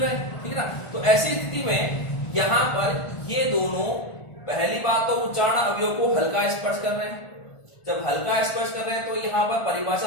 हैं, ठीक है ना। तो ऐसी स्थिति में यहां पर ये दोनों, पहली बात तो उच्चारण अवयव को हल्का स्पर्श कर रहे हैं। जब हल्का स्पर्श कर रहे हैं तो यहां पर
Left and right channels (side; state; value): right; late; 1.4 ms